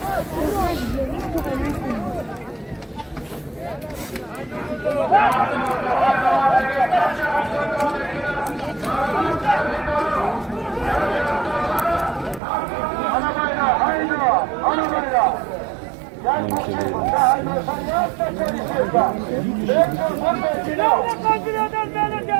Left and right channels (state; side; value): drops out; left; at 12.4 s